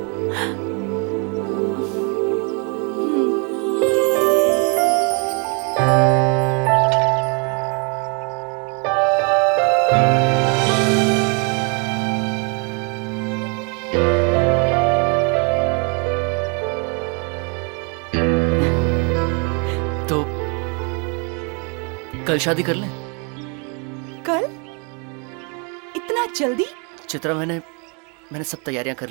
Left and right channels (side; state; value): left; quieter; 35.0 dB